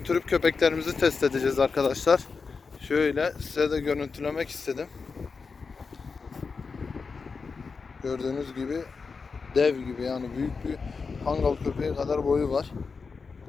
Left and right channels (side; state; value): right; quieter; 4.9 dB